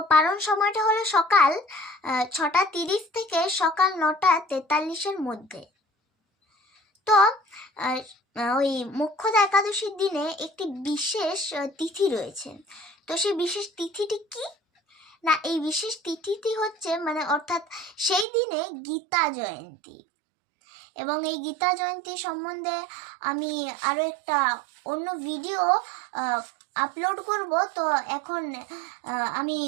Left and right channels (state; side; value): drops out; left; at 18.2 s